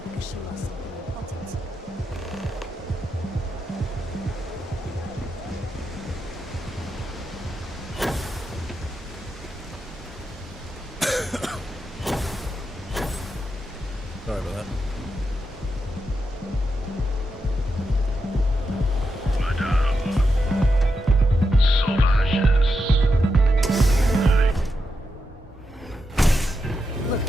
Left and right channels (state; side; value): normal; both; correlation 0.86